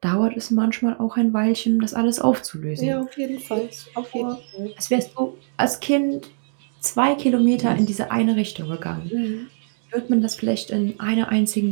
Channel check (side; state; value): left; silent; digital silence